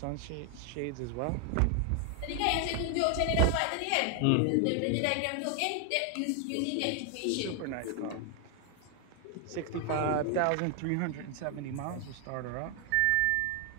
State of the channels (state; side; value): different; both; correlation 0.00